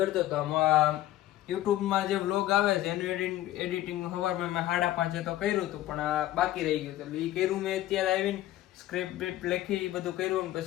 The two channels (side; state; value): right; quieter; 14.4 dB